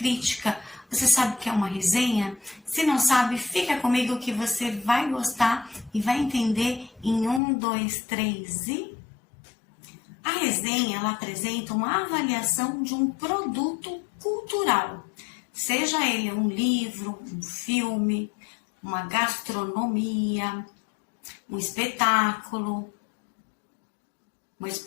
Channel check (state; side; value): drops out; right; at 7.4 s